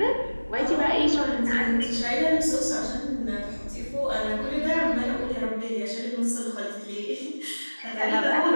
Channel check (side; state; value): both; inverted; correlation -1.00